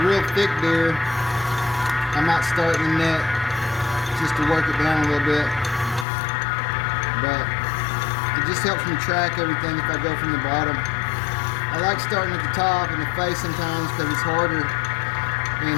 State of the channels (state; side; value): drops out; right; at 6.1 s